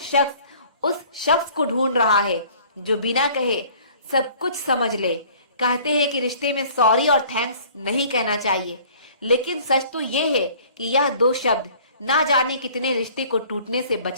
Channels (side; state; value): both; inverted; correlation -0.52